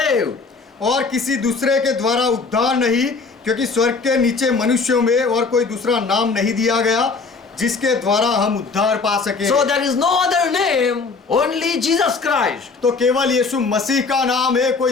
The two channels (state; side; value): quieter; right; 4.4 dB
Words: और किसी दूसरे के द्वारा उद्धार नहीं, क्योंकि स्वर्ग के नीचे मनुष्यों में और कोई दूसरा नाम नहीं दिया गया जिसके द्वारा हम उद्धार पा सके। So there is no other name, only Jesus Christ. तो केवल यीशु मसीह का नाम है,